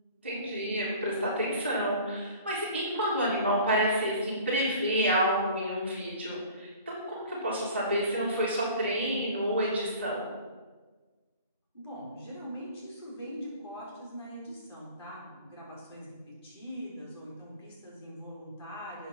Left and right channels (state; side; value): inverted; both; correlation -0.44